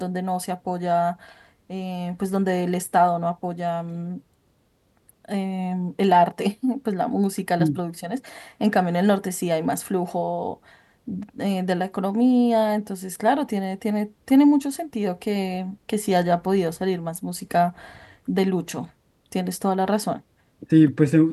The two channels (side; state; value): both; identical; correlation 1.00